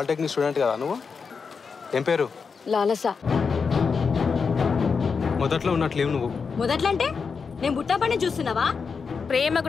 స్టూడెంట్ కదా నువ్వు? ఏం పేరు? లాలస. మొదట్లో ఉన్నట్లేవు నువ్వు. మొదట్లో అంటే నేను బుట్టపని చూస్తున్నావా? ప్రేమకు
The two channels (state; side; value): quieter; right; 5.5 dB